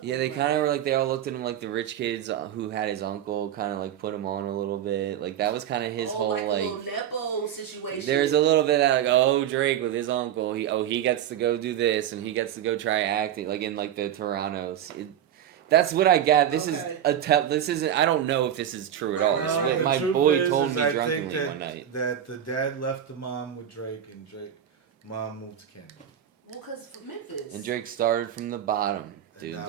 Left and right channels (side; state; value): left; quieter; 10.2 dB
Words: Yeah, with they him kind of like were like, they all looked at him like the rich kids who had his uncle, kind of like put him on a little bit. Like that was kind of his oh, whole like a like. little nepo situation. There's a little bit of that, like, oh, Drake with his uncle. He gets to go do this, and he gets to go try acting, like in like the Toronto's. That's what I got. This Okay. this isn't. I don't know if this is true at Right, all. right, This is right. what The my truth boy is told me I drunkenly think one night. that the dad left the mom with Drake and mom moved to Canada. Well, cause Memphis. And Drake started from the bottom, dude.